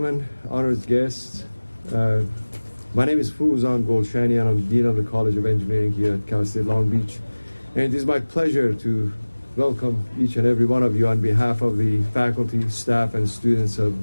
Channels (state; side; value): inverted; both; correlation -1.00